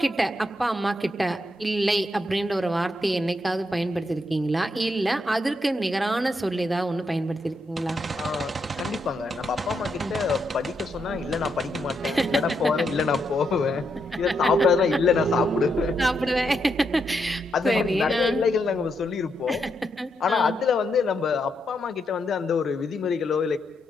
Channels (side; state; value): both; normal; correlation 0.80